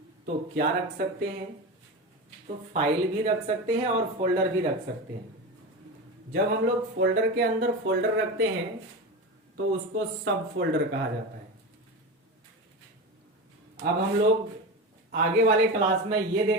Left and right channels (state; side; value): normal; both; correlation 0.23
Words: तो क्या रख सकते हैं, तो फाइल भी रख सकते हैं और फोल्डर भी रख सकते हैं। जब हम लोग फोल्डर के अंदर फोल्डर रखते हैं तो उसको सब फोल्डर कहा जाता है। अब हम लोग आगे वाले क्लास में ये